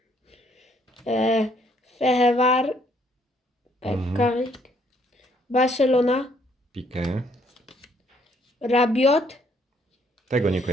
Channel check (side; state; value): both; normal; correlation 0.67